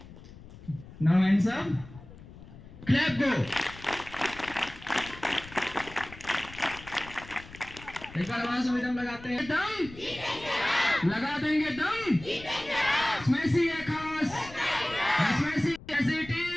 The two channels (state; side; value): noise; left; rumble, 17 dB below the sound